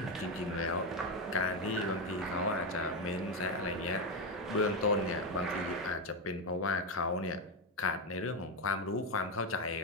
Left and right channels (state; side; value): normal; both; correlation 0.09